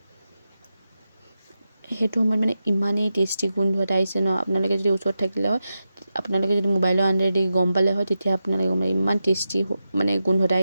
সেইটো সময়ত মানে ইমানেই টেষ্টি গোন্ধ এটা আহিছে ন আপোনালোকে যদি ওচৰত থাকিলে হয় আপোনালোকে যদি মোবাইলৰ আণ্ডাৰেদি গম পালে হয় তেতিয়া আপোনালোকে গম পালে ইমান টেষ্টি মানে গোন্ধ এটা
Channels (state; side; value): inverted; both; correlation -0.90